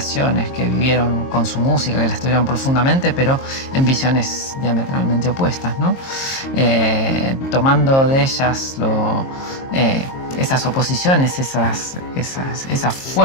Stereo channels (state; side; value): late; right; 22 ms